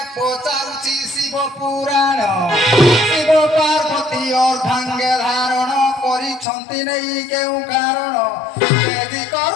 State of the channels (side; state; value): right; drops out; at 6.5 s